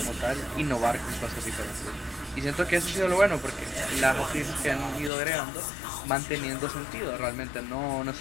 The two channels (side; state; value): right; drops out; at 5.1 s